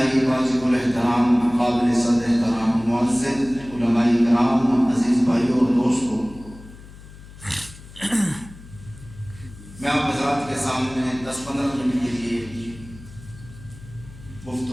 واجب الاحترام قابل صد احترام معزز علماء کرام عزیز بھائیوں اور دوستوں، میں آپ حضرات کے سامنے 10-15 منٹ کے لیے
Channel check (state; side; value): noise; left; hum, 18 dB below the sound